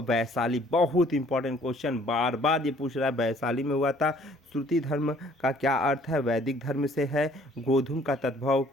बहुत इंपॉर्टेंट क्वेश्चन, बार बार ये पूछ रहा है। वैशाली में हुआ था। श्रुति धर्म का क्या अर्थ है? वैदिक धर्म से है। गोधूम का तद्भव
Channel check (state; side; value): normal; both; correlation 0.58